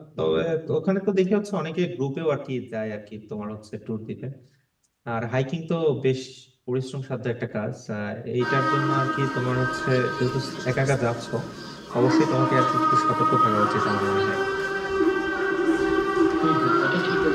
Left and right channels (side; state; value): both; identical; correlation 1.00